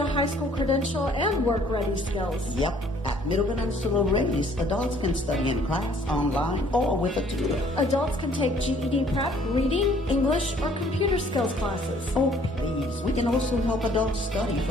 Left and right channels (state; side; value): normal; both; correlation 0.59